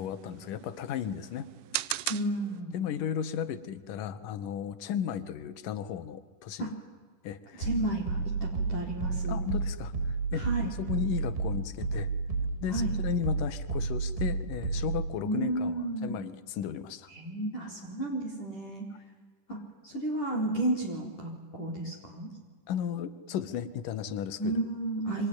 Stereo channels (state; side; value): late; right; 10 ms